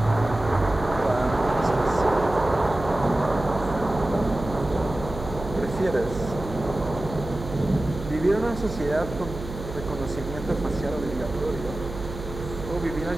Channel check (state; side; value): noise; right; hum, 10 dB below the sound